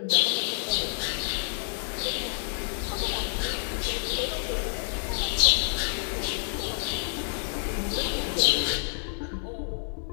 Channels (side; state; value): right; silent; digital silence